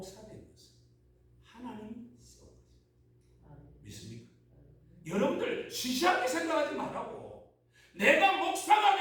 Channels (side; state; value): both; identical; correlation 1.00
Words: 된 것은 하나님이 세워주셨습니다. 믿습니까? 여러분들 시시하게 생각하지 말라고. 내가 목사가